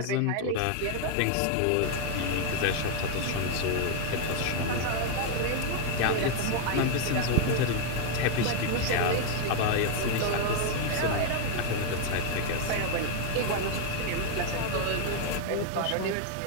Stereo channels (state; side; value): different; both; correlation 0.00